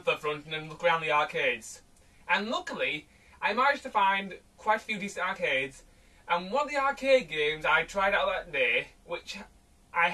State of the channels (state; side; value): identical; both; correlation 1.00